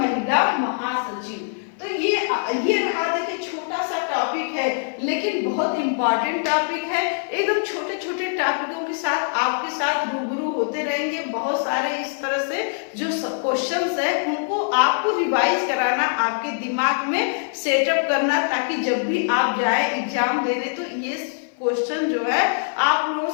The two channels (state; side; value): silent; right; 56 dB below the other